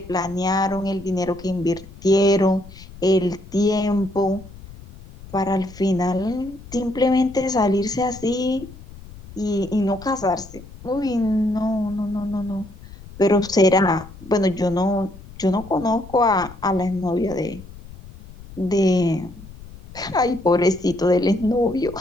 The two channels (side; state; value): left; noise; rumble, 18 dB below the sound